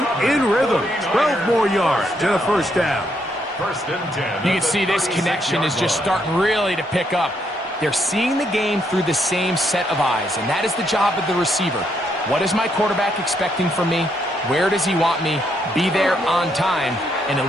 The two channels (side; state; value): both; normal; correlation 0.75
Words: in rhythm. 12 more yards and a first down. First and 10. You can see this connection is just starting really to pick up. They're seeing the game through the same set of eyes, and that is the job of the receiver. What is my quarterback expecting from me? Where does he want me? Be there on time, and it